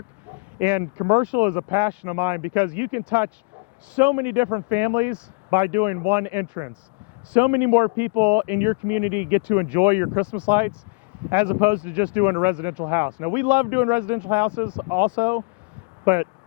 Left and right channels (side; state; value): right; quieter; 33.5 dB